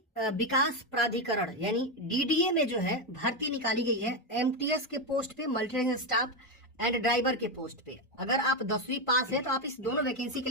विकास प्राधिकरण यानी डीडीए में जो है भर्ती निकाली गई है एमटीएस के पोस्ट पे, मल्टी स्टाफ एंड ड्राइवर के पोस्ट पे। अगर आप 10वीं पास है तो आप इस दोनों वैकेंसी के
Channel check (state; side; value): normal; both; correlation 0.09